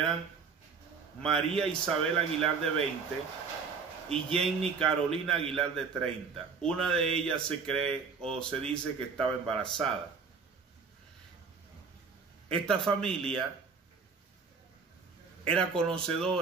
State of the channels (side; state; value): left; quieter; 5.4 dB